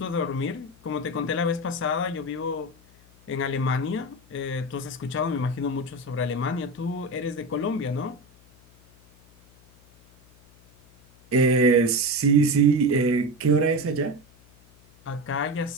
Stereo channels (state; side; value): noise; left; hum, 28 dB below the sound